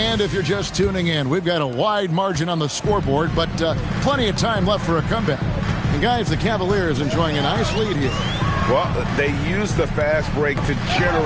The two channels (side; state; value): both; identical; correlation 1.00